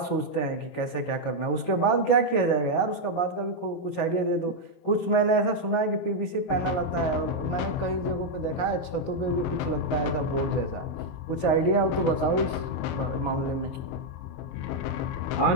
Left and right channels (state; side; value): late; right; 22 ms